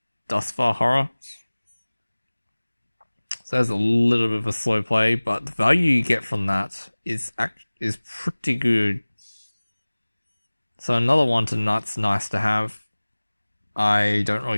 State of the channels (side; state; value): both; inverted; correlation -1.00